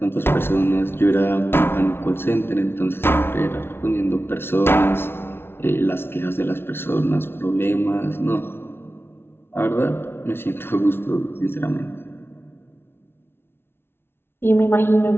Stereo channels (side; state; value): right; late; 0.11 ms